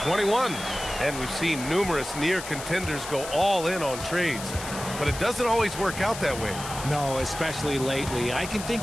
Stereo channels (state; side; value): noise; left; hiss, 10 dB below the sound